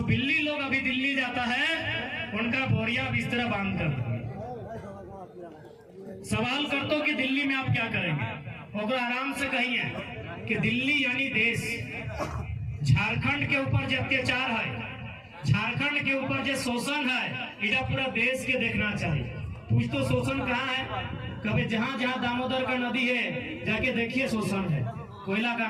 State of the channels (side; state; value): both; identical; correlation 1.00